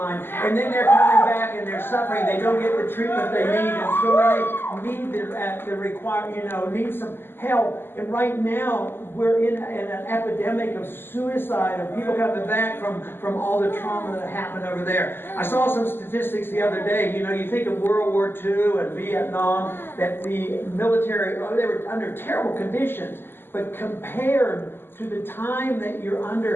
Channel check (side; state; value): right; late; 0.10 ms